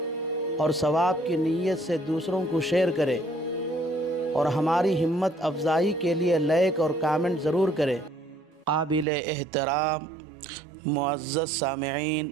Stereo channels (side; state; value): left; drops out; at 9.1 s